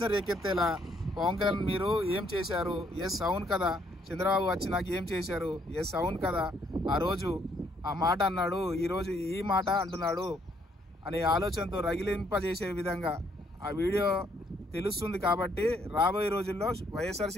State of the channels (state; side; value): normal; both; correlation 0.69